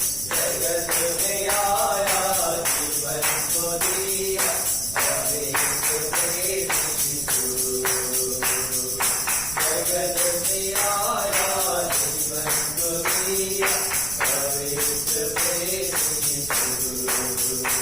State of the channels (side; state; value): right; noise; rumble, 13 dB below the sound